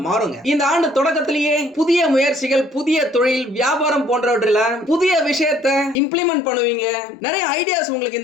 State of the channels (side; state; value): right; drops out; at 6.0 s